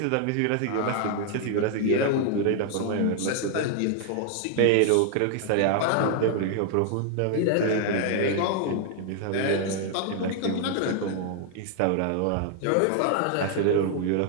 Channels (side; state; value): both; different; correlation 0.00